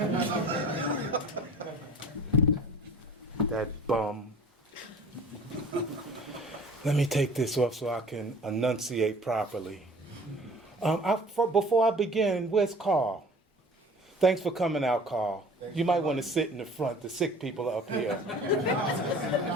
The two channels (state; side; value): normal; both; correlation 0.46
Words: That bum. Let me take this off so I can enunciate properly. Before I begin, where's Carl? Thanks for coming out, Carl. You might want to sit in the front. The sick people are up here.